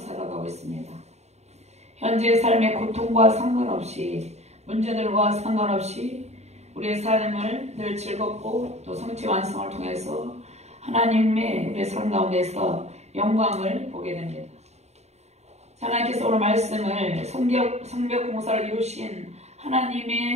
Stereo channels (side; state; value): left; late; 0.32 ms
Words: 있습니다. 현재의 삶의 고통과 상관없이, 문제들과 상관없이 우리의 삶을 늘 즐겁고 또 성취 완성을 통해서 하나님의 우리의 삶 가운데서 영광을 보게 됩니다. 하나님께서 오늘 말씀을 성벽 공사를 이루신